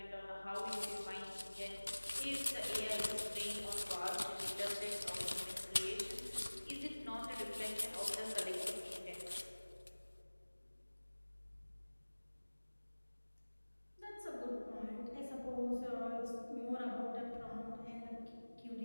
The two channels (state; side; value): inverted; both; correlation -1.00